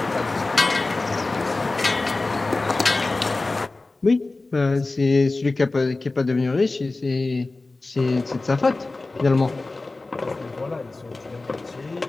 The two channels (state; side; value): quieter; right; 3.3 dB